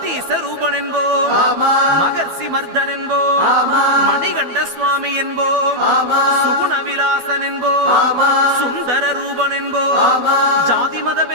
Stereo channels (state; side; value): late; left; 12 ms